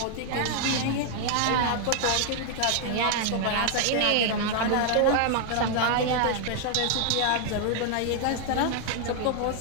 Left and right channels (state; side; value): different; both; correlation 0.00